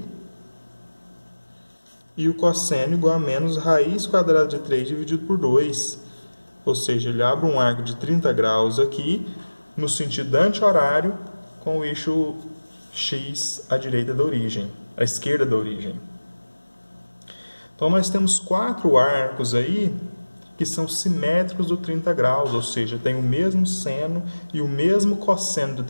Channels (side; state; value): both; inverted; correlation -1.00